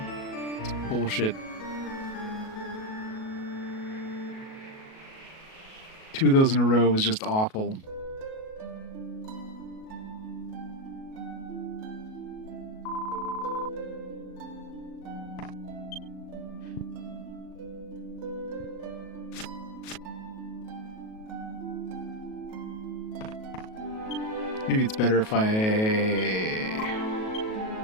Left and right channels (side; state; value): right; late; 37 ms